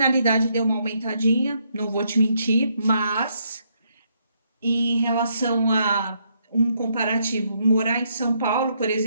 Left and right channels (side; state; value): both; inverted; correlation -0.74